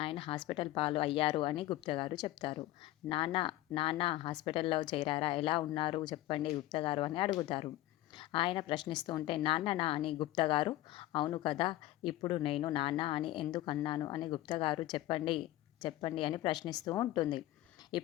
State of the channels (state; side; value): quieter; right; 15.8 dB